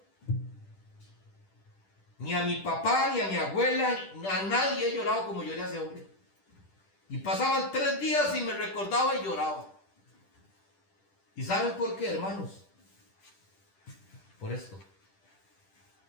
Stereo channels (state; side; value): late; right; 10 ms